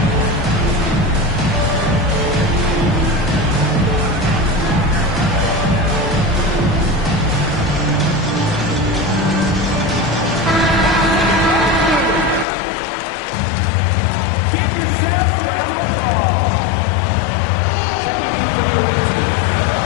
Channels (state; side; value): drops out; right; at 12.5 s